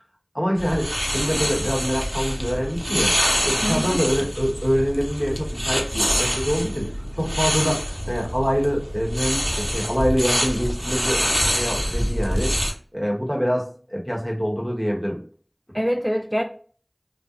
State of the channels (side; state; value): both; identical; correlation 1.00